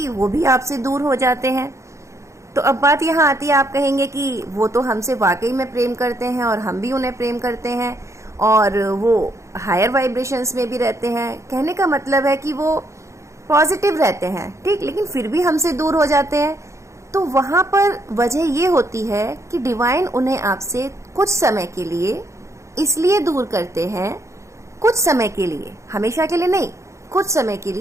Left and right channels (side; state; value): left; late; 0.14 ms